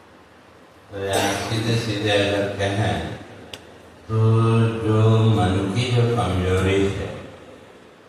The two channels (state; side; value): identical; both; correlation 1.00